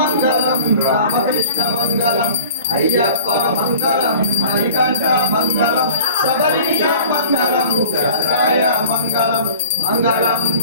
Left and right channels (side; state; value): both; inverted; correlation -0.46